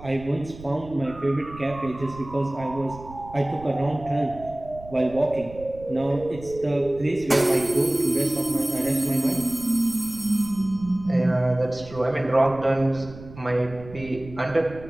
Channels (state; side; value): noise; right; rumble, 17 dB below the sound